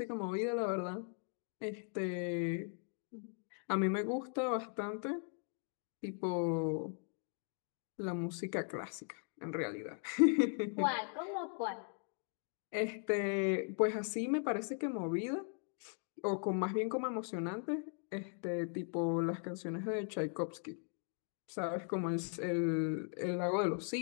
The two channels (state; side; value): silent; right; 52 dB below the other